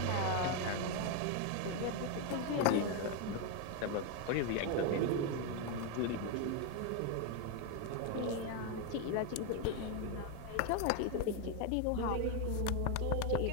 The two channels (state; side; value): different; both; correlation 0.01